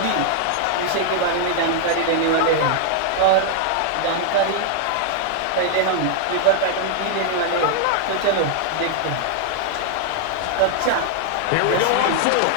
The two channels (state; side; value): different; both; correlation 0.00